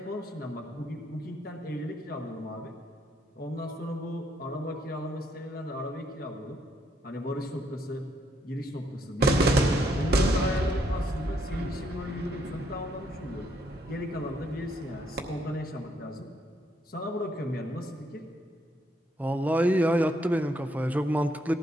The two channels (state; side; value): normal; both; correlation 0.73